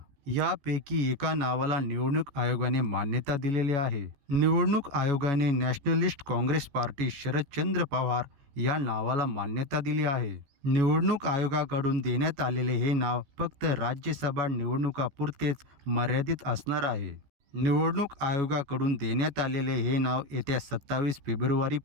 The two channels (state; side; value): late; left; 14 ms